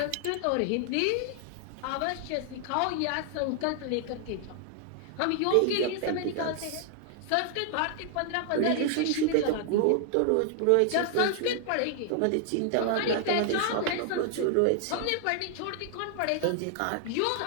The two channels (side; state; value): both; different; correlation 0.00